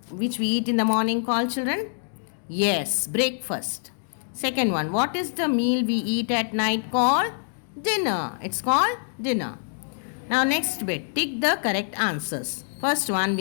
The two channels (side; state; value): right; silent; digital silence